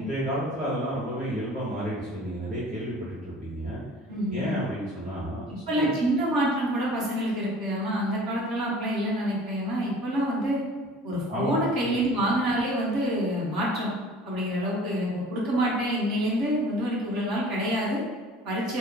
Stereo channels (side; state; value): both; normal; correlation 0.47